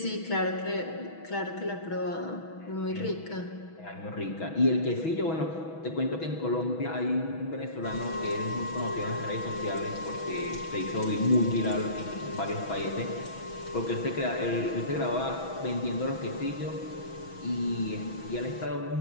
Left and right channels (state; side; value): late; right; 6.1 ms